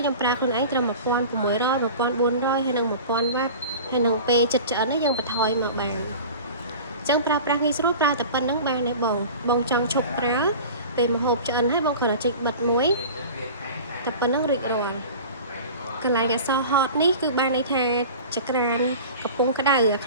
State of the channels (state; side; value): inverted; both; correlation -0.37